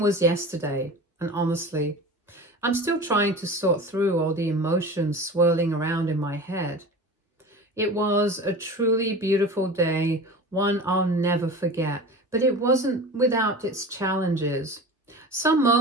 yesterday, and honestly, I'm still trying to sort through all the emotions swirling around in my head. It was a truly beautiful day, one I'll never forget, but it wasn't without its challenges. Some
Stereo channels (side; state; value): both; normal; correlation 0.35